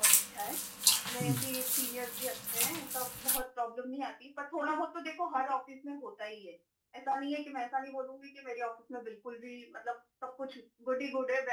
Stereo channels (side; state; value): both; identical; correlation 1.00